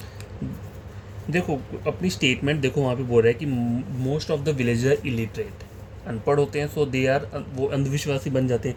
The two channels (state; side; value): identical; both; correlation 1.00